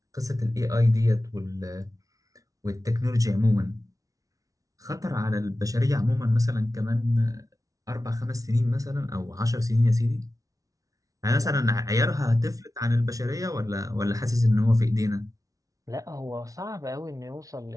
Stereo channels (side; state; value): left; late; 0.17 ms